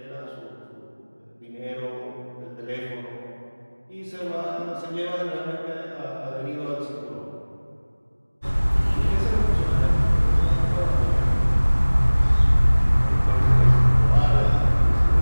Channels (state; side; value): inverted; both; correlation -1.00